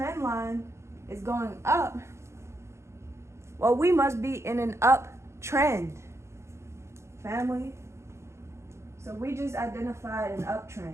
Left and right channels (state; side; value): late; left; 0.13 ms